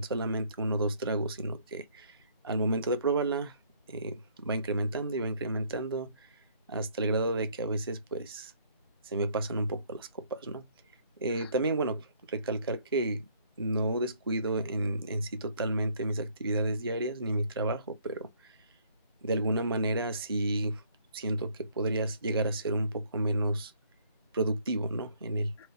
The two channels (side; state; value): both; inverted; correlation -0.63